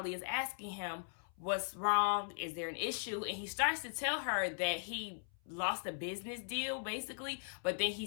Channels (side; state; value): right; silent; 52 dB below the other